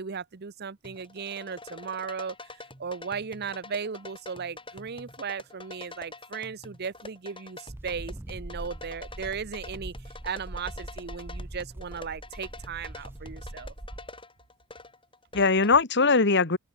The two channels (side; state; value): both; normal; correlation -0.18